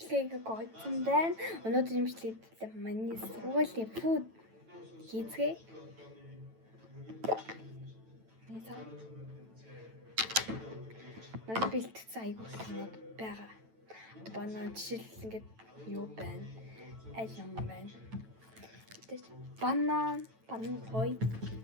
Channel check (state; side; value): late; left; 9.1 ms